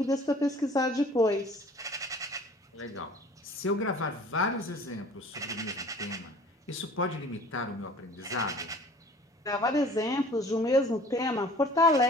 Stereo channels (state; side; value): normal; both; correlation 0.48